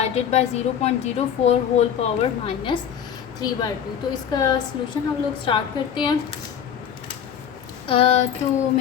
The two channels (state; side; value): quieter; right; 8.6 dB